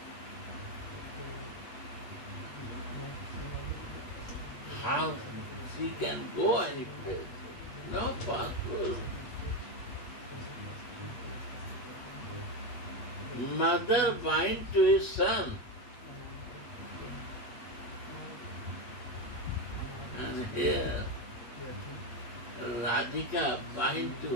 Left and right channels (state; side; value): late; right; 8.4 ms